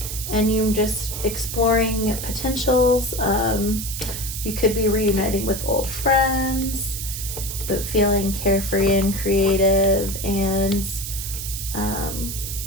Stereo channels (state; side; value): noise; right; hiss, 6 dB below the sound